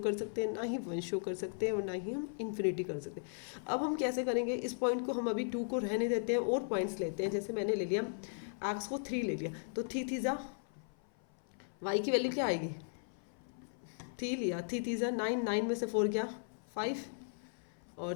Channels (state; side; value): silent; right; 53 dB below the other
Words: सकते हैं, ना ही 1 शो कर सकते हैं, और ना ही हम इन्फिनिटी कर सकते हैं। अब हम कैसे करेंगे, इस पॉइंट को हम अभी 2 को रहने देते हैं और पॉइंट्स लेते हैं। जैसे मैंने ले लिया x को 3 ले लिया, तो 3 3 ज़ा y की वैल्यू क्या आएगी, 3 लिया, 3 3 ज़ा 9, 9 में से 4 गया 5, और